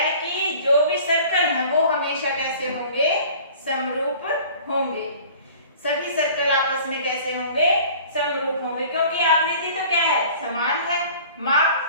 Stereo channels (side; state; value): both; inverted; correlation -0.46